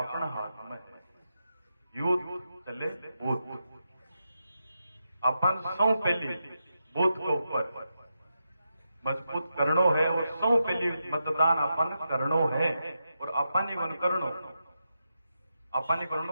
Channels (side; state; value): both; inverted; correlation -0.86